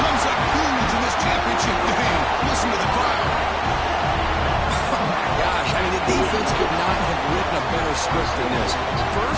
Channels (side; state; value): both; identical; correlation 1.00